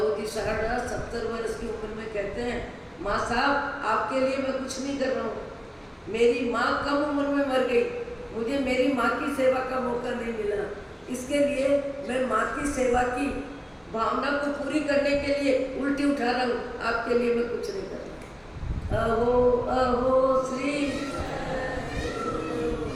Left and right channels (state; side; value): identical; both; correlation 1.00